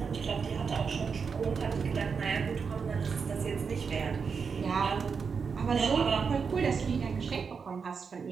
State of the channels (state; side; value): quieter; left; 5.7 dB